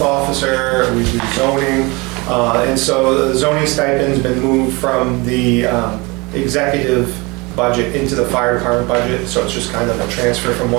officer, we do zoning. And so the zoning stipend's been moved from the executive budget into the fire department budget. So it's just kind of a transfer from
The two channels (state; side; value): quieter; left; 25.9 dB